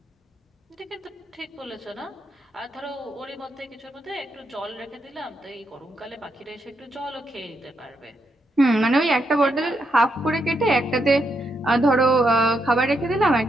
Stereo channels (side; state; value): both; normal; correlation 0.80